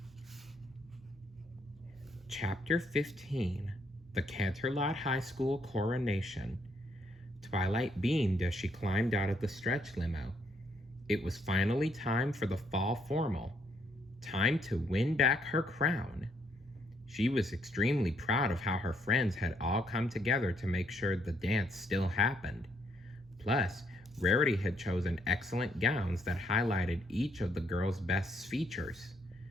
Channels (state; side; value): normal; both; correlation 0.71